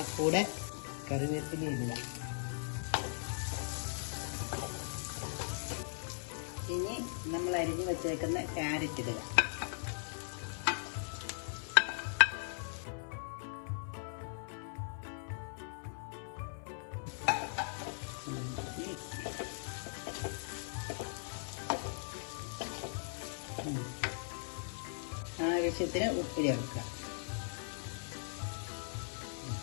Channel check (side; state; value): right; silent; 52 dB below the other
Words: കൂടെ കറിവേപ്പില ഇടുക. ഇനി നമ്മൾ അരിഞ്ഞു വെച്ചേക്കുന്ന ക്യാരറ്റ് ഇടുക. ആവശ്യത്തിന് ഉപ്പ് ചേർക്കുക.